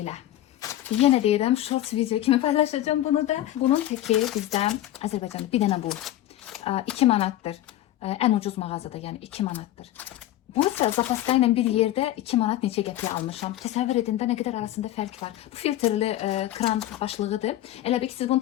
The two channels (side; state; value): right; quieter; 13.8 dB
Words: Yenə deyirəm, shorts video kimi paylaşacağım bunu da. Bunun təki bizdən Azərbaycanda bir dənə bu. 2 manatdır. Ən ucuz mağazada, yəni 2 manatdır. Bu isə zapaska ilə bir yerdə 2 manat neçə qəpiyə almışam. Təsəvvür edin də nə qədər arasında fərq var. Bu filtrli kran başlığıdır. Elə bir ki, siz bunu